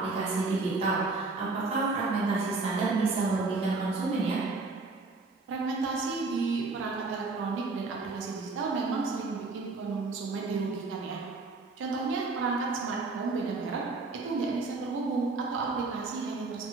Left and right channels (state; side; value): quieter; left; 3.7 dB